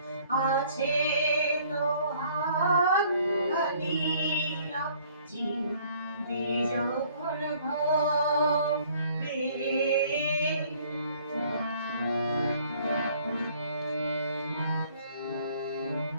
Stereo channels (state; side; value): inverted; both; correlation -0.58